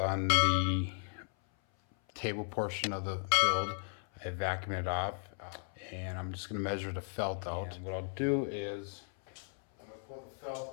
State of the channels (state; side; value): silent; right; 54 dB below the other